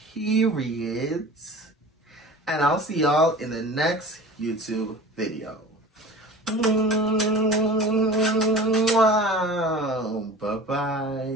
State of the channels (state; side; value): normal; both; correlation 0.38